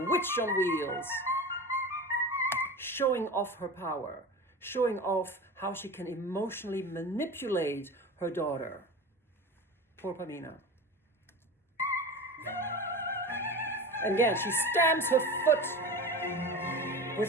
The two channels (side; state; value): both; normal; correlation 0.31